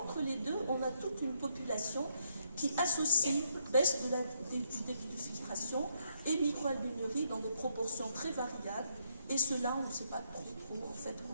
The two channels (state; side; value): inverted; both; correlation -0.75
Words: les deux, on a toute une population qui associe baisse du débit de filtration et microalbuminurie dans des proportions très variables. Et cela, on ne sait pas trop en fait